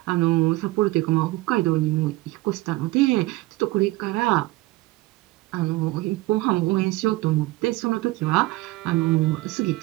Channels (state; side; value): quieter; left; 19.4 dB